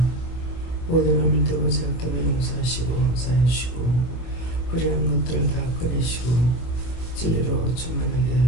모든 허물 되고 죄악 때문에 용서하시고 사해주시고 불의한 것들을 다 꺼내시고 진리로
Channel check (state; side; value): late; right; 24 ms